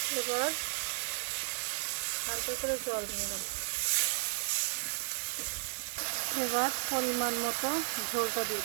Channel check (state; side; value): silent; left; digital silence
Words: এবার হালকা করে জল দিলাম। এবার পরিমাণ মতো ঝোলটা দিয়ে